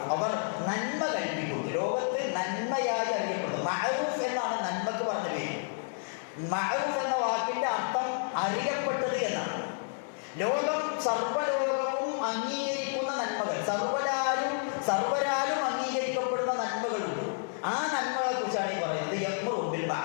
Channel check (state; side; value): silent; right; digital silence